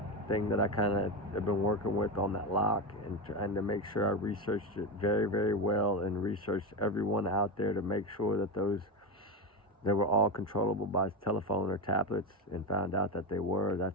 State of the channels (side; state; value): both; normal; correlation 0.17